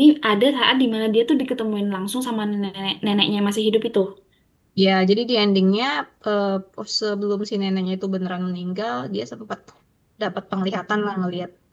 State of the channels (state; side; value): identical; both; correlation 1.00